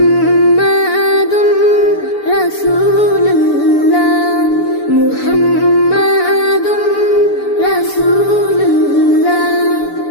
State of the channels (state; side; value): late; right; 6.9 ms